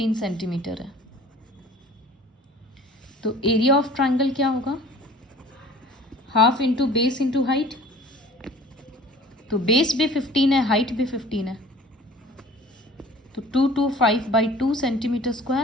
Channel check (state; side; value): normal; both; correlation 0.47